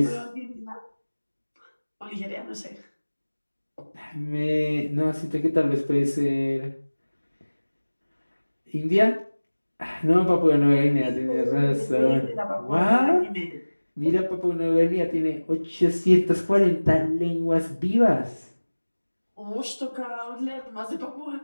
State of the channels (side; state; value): both; inverted; correlation -1.00